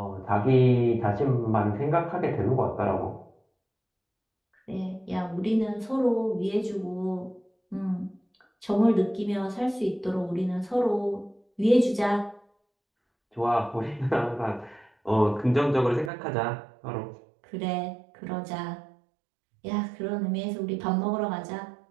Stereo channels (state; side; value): drops out; left; at 16.1 s